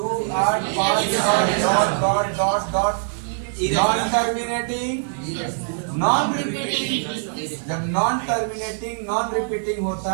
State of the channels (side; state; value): left; silent; digital silence